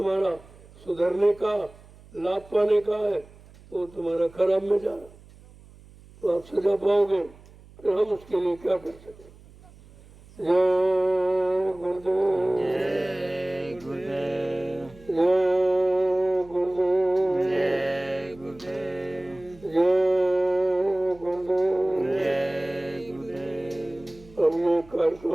सुधरने का, लाभ पाने का है, तो तुम्हारा खराब में जा रहा, तो आप सजा पाओगे। फिर हम उसके लिए क्या कर सकते। जय गुरुदेव। जय गुरुदेव। जय गुरुदेव। जय गुरुदेव। जय गुरुदेव। जय गुरुदेव। अब ये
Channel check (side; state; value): right; noise; hum, 23 dB below the sound